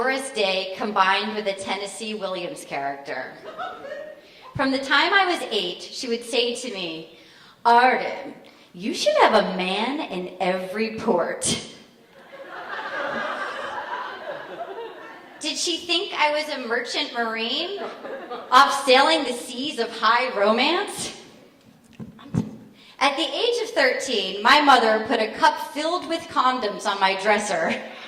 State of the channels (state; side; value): identical; both; correlation 1.00